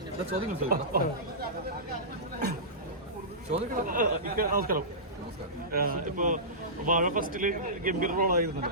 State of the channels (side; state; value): both; normal; correlation -0.19